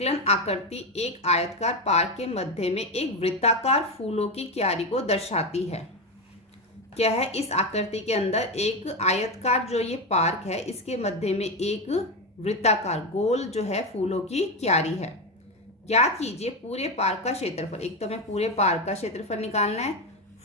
आकृति एक आयताकार पार्क के मध्य में एक वृत्ताकार फूलों की क्यारी को दर्शाती है। क्या है? इस आकृति के अंदर एक आयताकार जो ये पार्क है, इसके मध्य में एक वृत्ताकार गोल जो है फूलों की क्यारी है। ज्ञात कीजिए पूरे पार्क का क्षेत्रफल। एक तो हमें पूरे पार्क का क्षेत्रफल निकालना है,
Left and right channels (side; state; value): both; normal; correlation 0.13